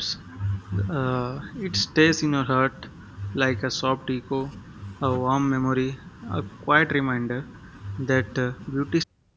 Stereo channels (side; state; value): both; identical; correlation 1.00